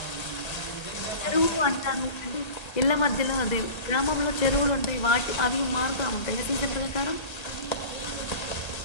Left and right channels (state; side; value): late; right; 1.3 ms